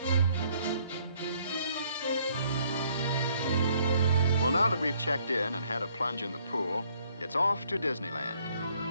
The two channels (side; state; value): both; inverted; correlation -0.65